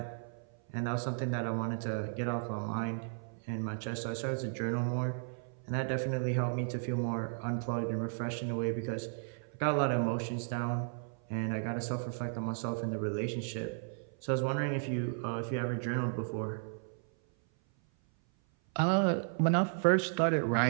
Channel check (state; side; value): silent; left; 55 dB below the other